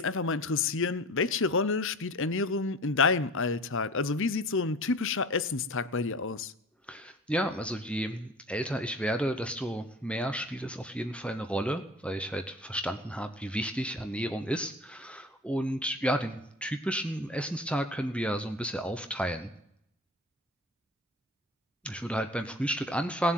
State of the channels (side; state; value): both; normal; correlation 0.40